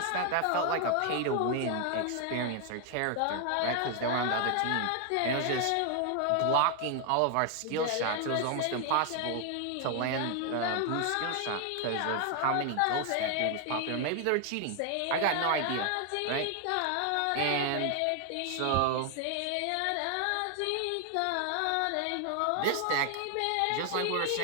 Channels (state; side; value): different; both; correlation 0.00